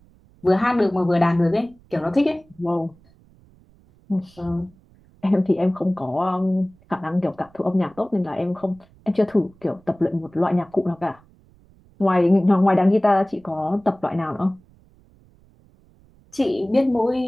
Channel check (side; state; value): right; noise; rumble, 29 dB below the sound